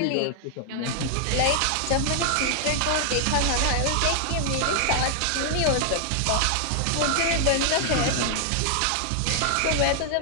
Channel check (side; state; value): both; different; correlation 0.00